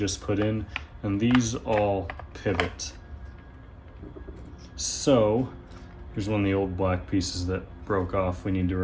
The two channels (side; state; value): both; identical; correlation 1.00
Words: put in, and these all pivot. So here's one of the old black pieces that broke off we need to